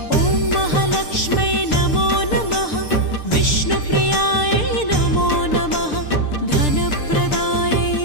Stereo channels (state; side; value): late; right; 6.7 ms